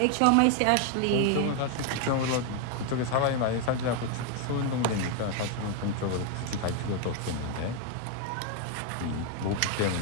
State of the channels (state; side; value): different; both; correlation 0.01